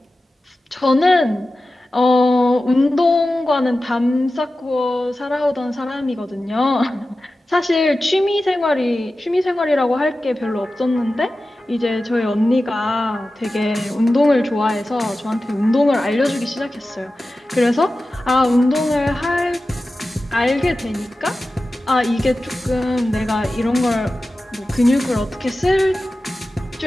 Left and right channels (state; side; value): normal; both; correlation 0.94